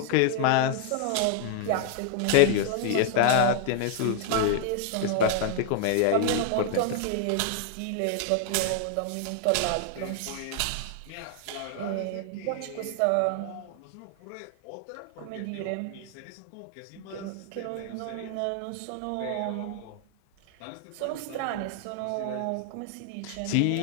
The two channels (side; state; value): both; different; correlation 0.00